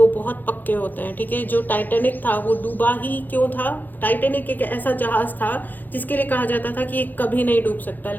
बहुत पक्के होते हैं, ठीक है। जो टाइटैनिक था वो डूबा ही क्यों था? टाइटैनिक एक ऐसा जहाज था जिसके लिए कहा जाता था कि ये कभी नहीं डूब सकता,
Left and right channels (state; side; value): late; right; 0.086 ms